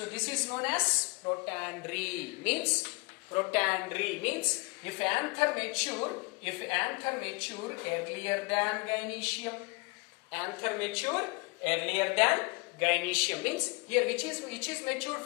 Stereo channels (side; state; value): right; quieter; 28.6 dB